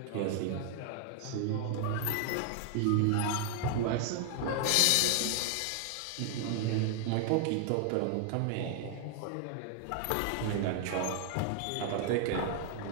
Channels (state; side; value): different; both; correlation 0.00